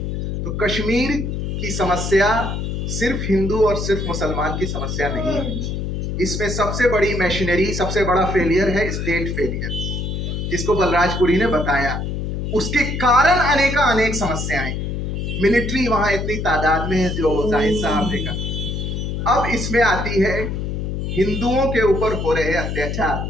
तो कश्मीर की समस्या सिर्फ हिंदू और सिर्फ मुसलमान की समस्या नहीं है। इसमें सबसे बड़ी मशीनरी, सबसे बड़ा फेलियर है स्टेट फेलियर, जिसको बलराजपुरी ने बताया। उसके कारण अनेक समस्याएं, मिलिट्री वहां इतनी तादाद में है जो जाहिद साहब ने कहा। अब इसमें आती है हिंदुओं के ऊपर हो रहे अत्याचार।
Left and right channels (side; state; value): left; noise; hum, 3 dB below the sound